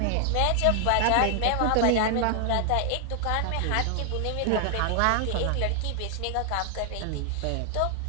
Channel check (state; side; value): different; both; correlation 0.00